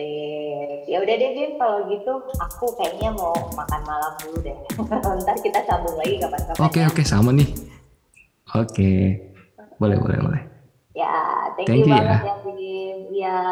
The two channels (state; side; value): identical; both; correlation 1.00